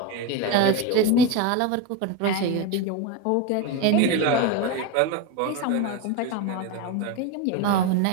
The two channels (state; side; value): different; both; correlation 0.05